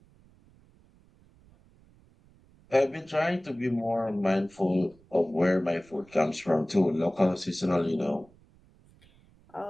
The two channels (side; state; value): right; noise; rumble, 29 dB below the sound